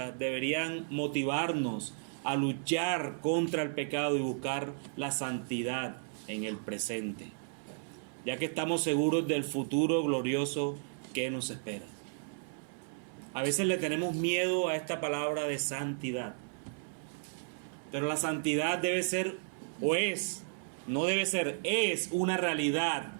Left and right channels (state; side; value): silent; left; 55 dB below the other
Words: deberían motivarnos a luchar contra el pecado y buscar la santidad en el presente, ya que estamos seguros del futuro glorioso que nos espera. A veces le tenemos miedo a esta palabra de santidad, pero la santidad debe ser, o es, no debe ser, es una realidad